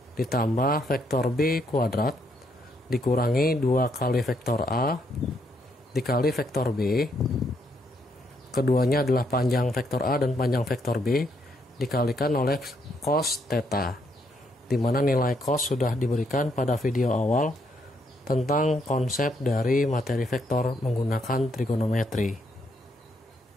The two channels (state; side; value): normal; both; correlation 0.74